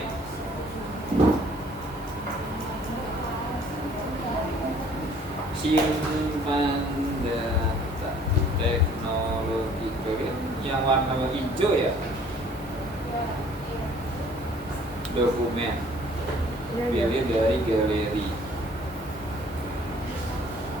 Simpan data teknologi kalian yang warna hijau ya. Dokumen. Pilih dari galeri.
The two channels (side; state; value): both; normal; correlation 0.56